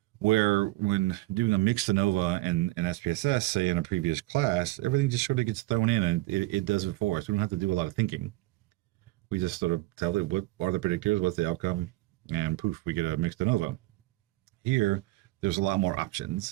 Where when doing a mixed ANOVA and SPSS, say in a previous class, everything just sort of gets thrown in and it does it for us. We don't have to do a lot of thinking. We just sort of tell it what are the predictors, what's the outcome, and poof, we get a mixed ANOVA. Here, there's a lot more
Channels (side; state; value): left; quieter; 19.5 dB